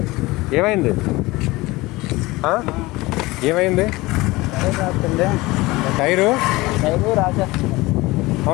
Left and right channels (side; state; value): right; quieter; 21.0 dB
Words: ఏమైంది? ఏమైంది? టైరు